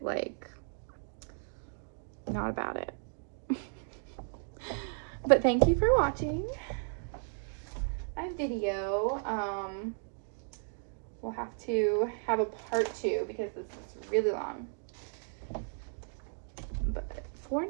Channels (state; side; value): silent; left; 55 dB below the other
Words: Like, not about it. But thank you for watching my video. We'll have to have a part 2 because this is really long. But for